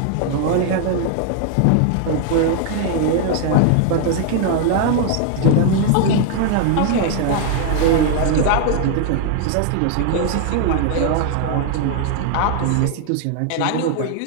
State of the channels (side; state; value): both; different; correlation 0.00